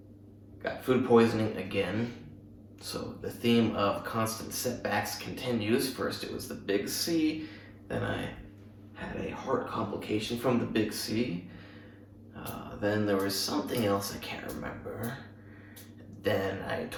Got food poisoning again. So the theme of constant setbacks continues. First it was the big C, then I had a heart complication from the big C. Then there was something else I can't remember. Then I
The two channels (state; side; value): identical; both; correlation 1.00